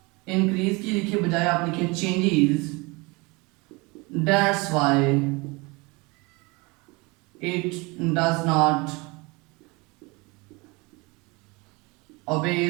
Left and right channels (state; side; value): quieter; left; 26.3 dB